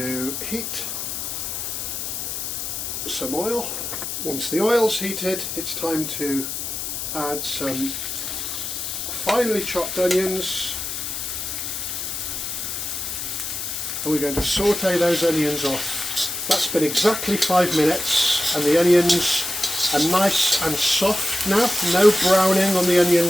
heat some oil. Once the oil's heated, it's time to add some finely chopped onions. And we're going to saute those onions off. That's been exactly 5 minutes and the onions are nice and soft now. No browning on the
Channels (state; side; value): noise; left; hiss, 5 dB below the sound